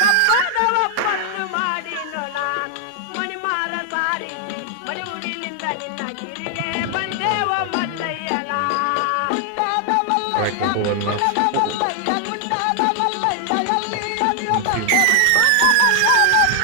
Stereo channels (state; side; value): different; both; correlation 0.00